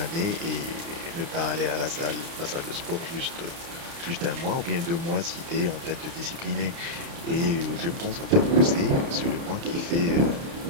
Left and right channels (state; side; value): late; left; 30 ms